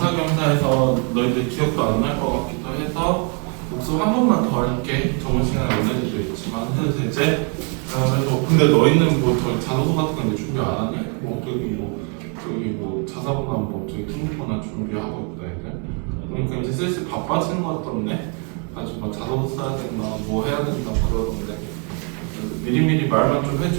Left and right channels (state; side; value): quieter; left; 37.8 dB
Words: 너희들 기억도 안 날 것 같기도 해서 복습 한 번만 더 할게. 저번 시간에 언제도 있지만 해도 되지? 그래서 근데 너희는 뭐 자소서 같은 거 준비 안 하니? 뭐 저기 뭐 자사고나 뭐 저기 통보나 준비하고 있다 애들. 그러니까 이제 슬슬 바빠지는 것 같던데. 아주 뭐 자소서 써야 된다, 뭐 해야 된다 그러던데. 미리미리 말만 좀